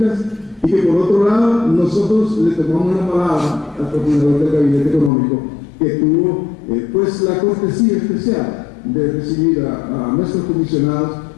y que por otro lado nosotros le tomamos la palabra al coordinador del Gabinete Económico que tuvo pues la cortesía especial de recibir a nuestros comisionados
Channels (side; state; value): right; drops out; at 5.1 s